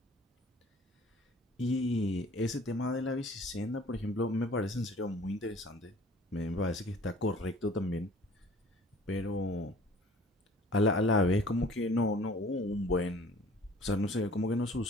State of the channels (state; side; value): normal; both; correlation 0.50